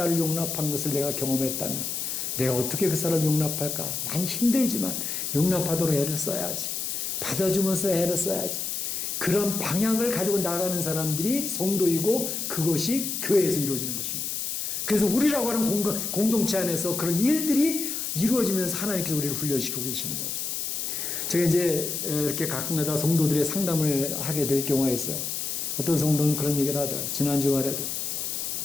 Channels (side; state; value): left; noise; hiss, 3 dB below the sound